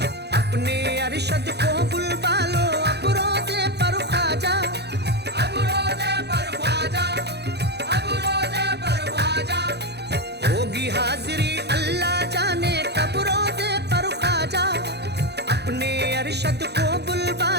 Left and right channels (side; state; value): left; late; 0.48 ms